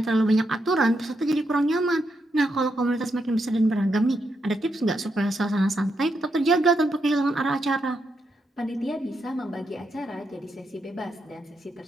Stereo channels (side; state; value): both; normal; correlation 0.82